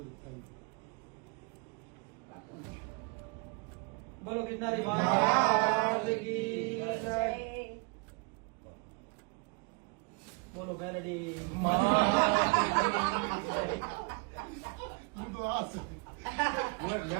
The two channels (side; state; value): left; quieter; 31.5 dB